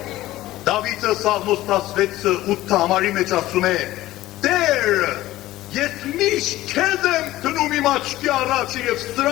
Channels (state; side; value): quieter; right; 16.0 dB